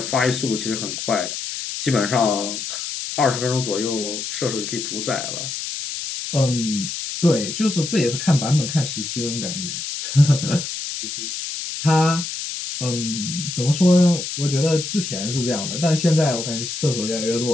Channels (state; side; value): noise; left; hiss, 6 dB below the sound